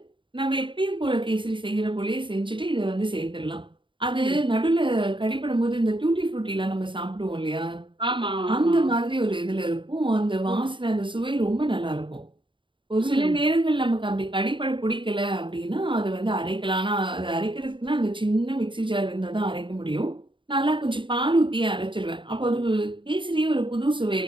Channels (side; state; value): left; late; 0.24 ms